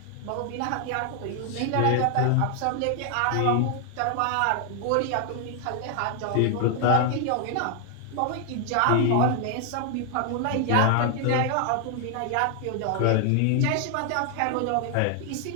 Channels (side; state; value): both; different; correlation 0.00